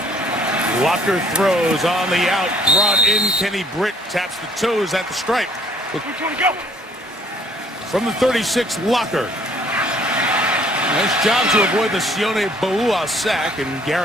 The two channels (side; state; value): both; normal; correlation 0.60